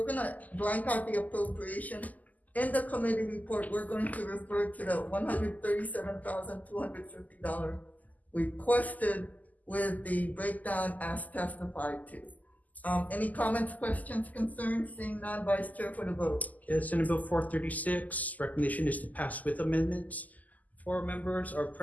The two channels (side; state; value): right; late; 0.079 ms